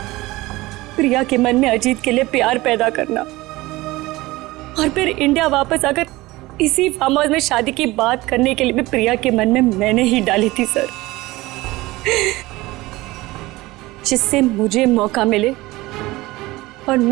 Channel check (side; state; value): left; quieter; 19.7 dB